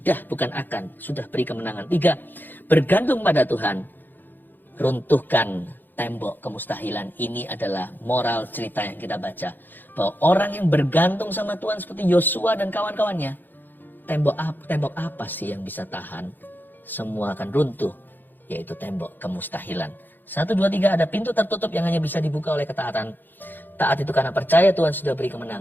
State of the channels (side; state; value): right; late; 0.090 ms